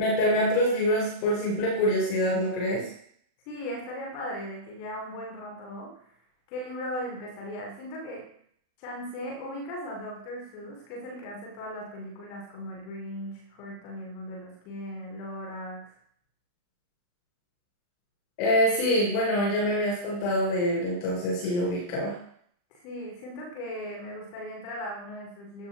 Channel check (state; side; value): late; right; 40 ms